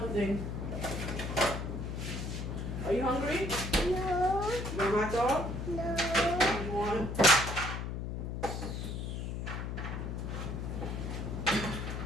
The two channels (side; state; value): left; noise; hum, 4 dB below the sound